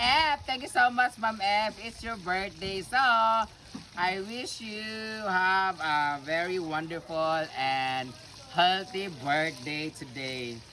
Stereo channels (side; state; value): both; identical; correlation 1.00